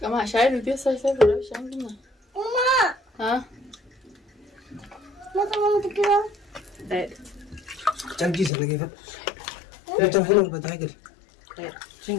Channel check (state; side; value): drops out; right; at 8.5 s